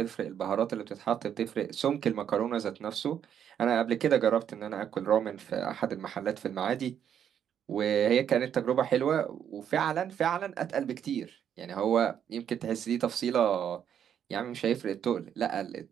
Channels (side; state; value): left; quieter; 9.0 dB